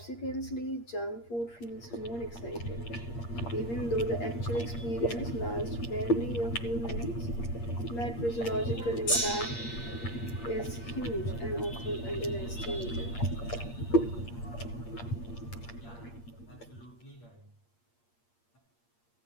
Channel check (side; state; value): right; late; 8.5 ms